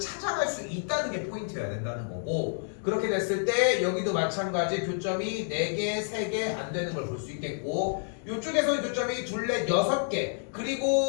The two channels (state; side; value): silent; right; digital silence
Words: 수 있다는 게 포인트여야 된다는 거고, 그렇게 됐을 때 여기도 마찬가지 교점이 4개, 3개 안 되는 걸 볼 수 있겠고, 이쪽에서는 교점이 2, 4, 6개,